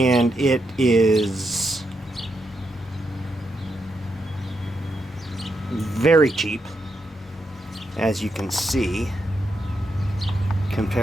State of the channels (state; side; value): normal; both; correlation 0.83